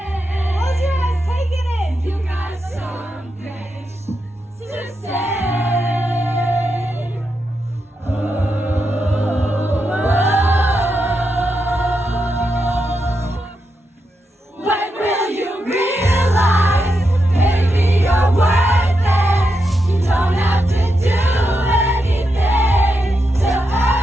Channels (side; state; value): both; normal; correlation 0.85